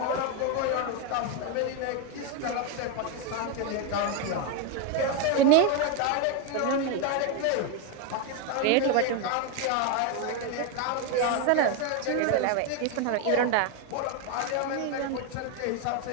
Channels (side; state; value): both; different; correlation 0.02